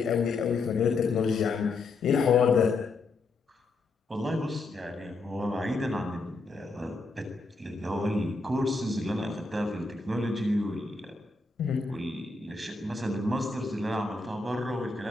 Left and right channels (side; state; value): right; quieter; 3.6 dB